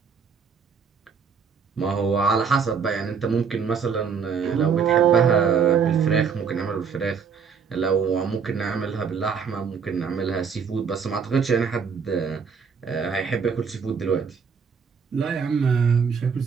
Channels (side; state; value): left; quieter; 6.2 dB